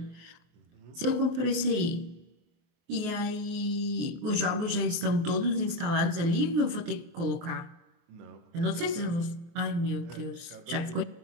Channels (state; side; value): late; left; 24 ms